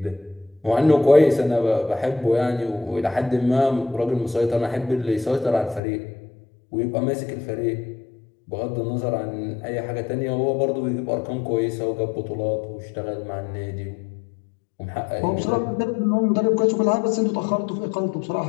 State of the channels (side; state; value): right; drops out; at 5.8 s